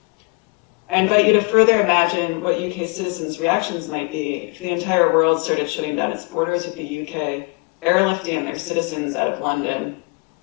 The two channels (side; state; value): right; quieter; 31.2 dB